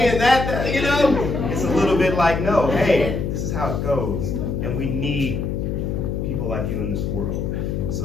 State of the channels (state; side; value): noise; left; hum, 2 dB below the sound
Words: it's a little bit like, no, hey, this is how it goes. And we need people like you in this world.